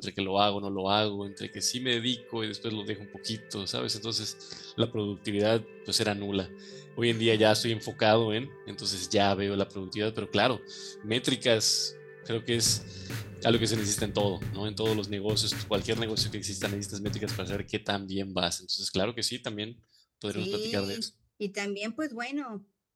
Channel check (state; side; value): identical; both; correlation 1.00